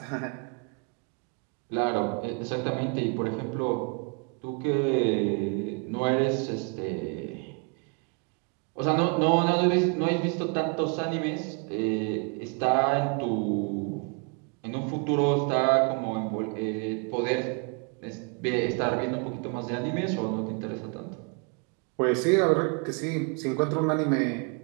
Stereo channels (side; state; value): left; quieter; 35.7 dB